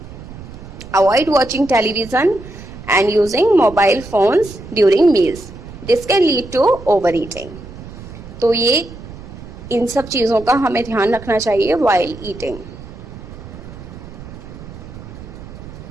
Avoid watching television and using mobile phones during meals. This can lead to overeating. तो ये इन सब चीज़ों का हमें ध्यान रखना चाहिए while eating.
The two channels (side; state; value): right; noise; rumble, 14 dB below the sound